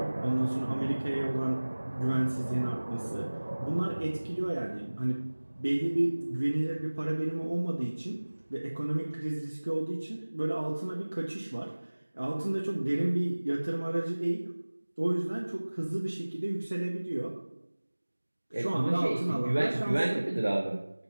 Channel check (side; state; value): both; inverted; correlation -1.00